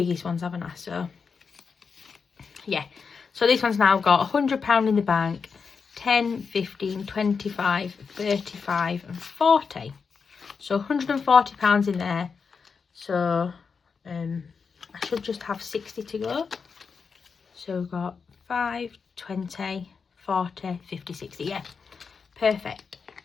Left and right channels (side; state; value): right; quieter; 5.5 dB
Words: ones, haven't I? So, yeah. So this one's now got £100 in the bank, 10, 15, 25, 35 and 40. So £140 in there. So I should just have 60 to go. So we've got 5, 20, 40, 50, 60. Yeah, perfect.